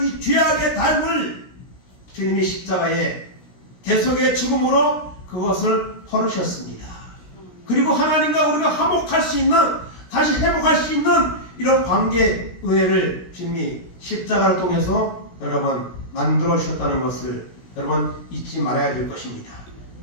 이 죄악의 담을 주님이 십자가에 대속의 죽음으로 그것을 헐으셨습니다. 그리고 하나님과 우리가 화목할 수 있는, 다시 회복할 수 있는 이런 관계 은혜를 주님이 십자가를 통해서 여러분 만들어 주셨다는 것을 여러분 잊지 말아야 될 것입니다.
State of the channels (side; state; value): right; late; 16 ms